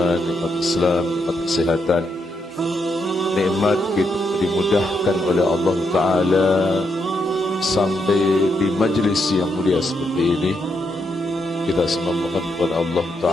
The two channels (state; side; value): normal; both; correlation 0.80